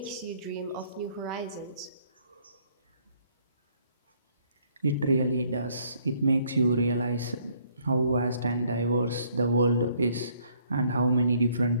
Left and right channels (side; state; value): both; inverted; correlation -0.65